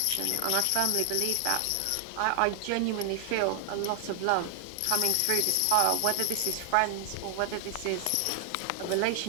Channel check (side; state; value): both; different; correlation 0.00